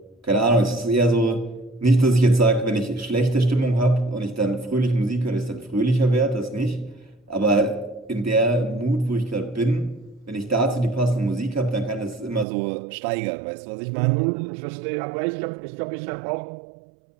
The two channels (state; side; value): drops out; left; at 12.5 s